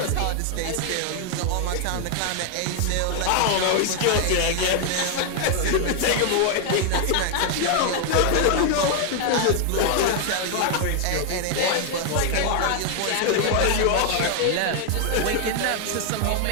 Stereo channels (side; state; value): both; different; correlation 0.00